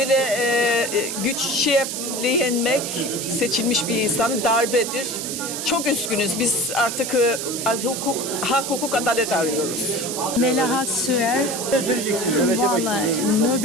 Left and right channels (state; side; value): noise; right; hiss, 5 dB below the sound